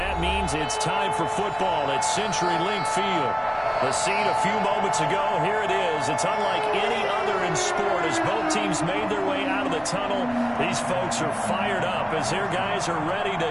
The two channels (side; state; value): both; identical; correlation 1.00